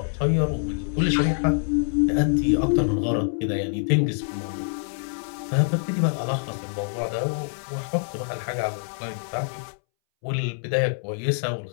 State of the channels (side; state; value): right; silent; 62 dB below the other